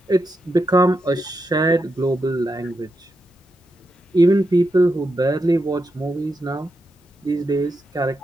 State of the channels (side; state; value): both; normal; correlation 0.85